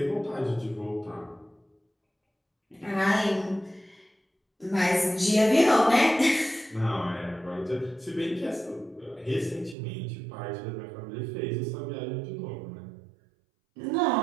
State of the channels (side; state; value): left; drops out; at 9.8 s